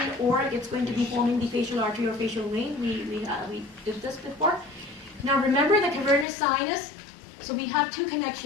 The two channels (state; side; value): drops out; right; at 6.2 s